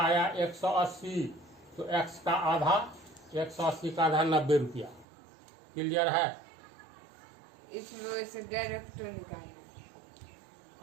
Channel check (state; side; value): drops out; left; at 5.1 s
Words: 180, तो एक्स का आधा, 180 का आधा 90 रुपया। क्लियर है। इसमें से डायरेक्ट निकालना।